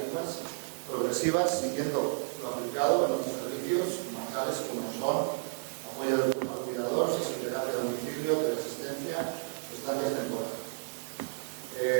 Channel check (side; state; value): left; silent; 57 dB below the other